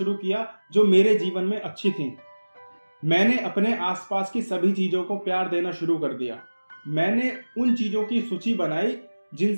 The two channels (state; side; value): inverted; both; correlation -1.00